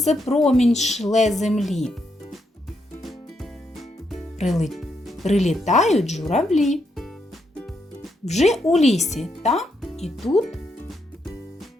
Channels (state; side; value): normal; both; correlation 0.79